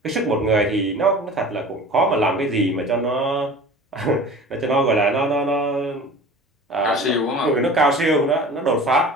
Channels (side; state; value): both; normal; correlation 0.40